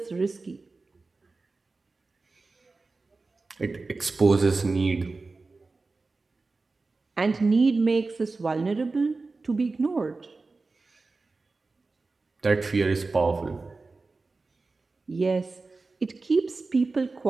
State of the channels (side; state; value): left; quieter; 3.7 dB